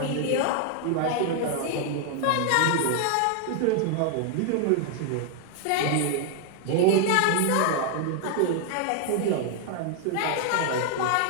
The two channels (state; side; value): different; both; correlation 0.00